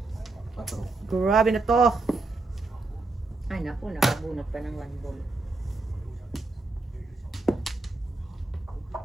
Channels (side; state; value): left; quieter; 3.4 dB